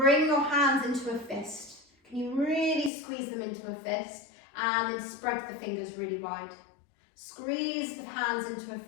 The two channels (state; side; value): drops out; right; at 2.9 s